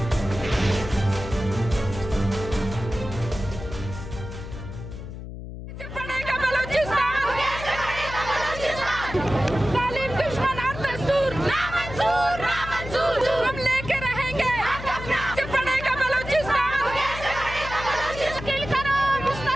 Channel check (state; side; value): noise; left; hum, 10 dB below the sound